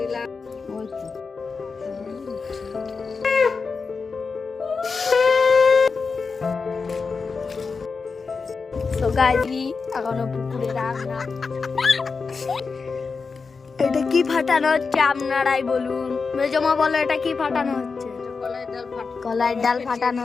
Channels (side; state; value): right; quieter; 4.8 dB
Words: তো গাইজি এখনো পুকুরে রান্না। এটা কি ফাটানো হচ্ছে আপনারাই বলুন। মেজমা বলো এটা কি ফাটানো হচ্ছে? কলাইয়ের ডাল ফাটানো